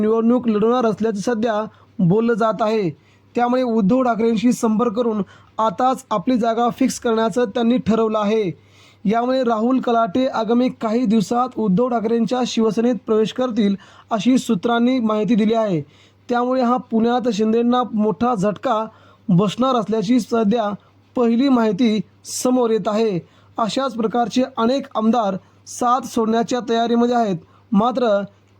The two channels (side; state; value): both; identical; correlation 1.00